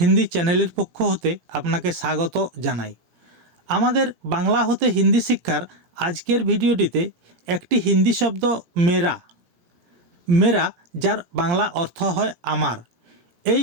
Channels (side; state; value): left; late; 17 ms